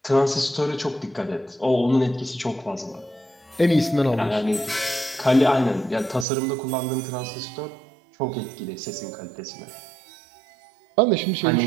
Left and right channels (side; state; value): left; drops out; at 6.2 s